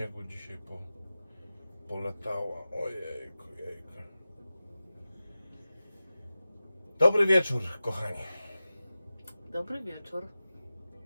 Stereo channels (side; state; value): both; inverted; correlation -0.95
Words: dzisiaj polatała. Ojejku, jejku. Dobry wieczór, kochani. Dobry wieczór.